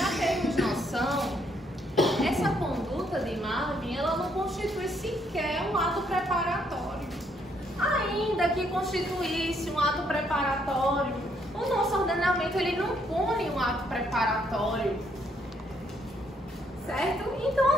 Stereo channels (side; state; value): both; normal; correlation 0.71